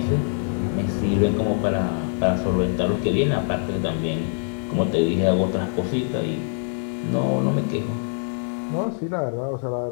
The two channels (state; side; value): silent; right; digital silence